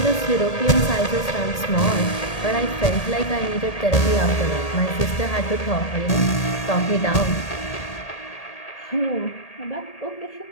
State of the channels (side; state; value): right; late; 1.8 ms